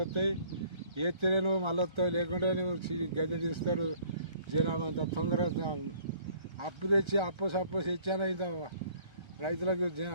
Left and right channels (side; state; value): left; late; 1.3 ms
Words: వస్తాయి ఏత్తేనే నువ్వు మళ్ళీ వస్తావు లేకుంటే నువ్వు గద్దె తీస్తారు జనాభా అంత తొందరగా అప్పు తెచ్చి అప్పు తెచ్చాను ఇంత రైతులకు